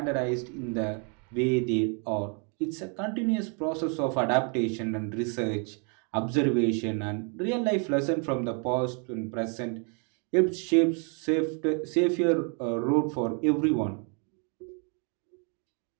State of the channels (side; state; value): left; quieter; 38.3 dB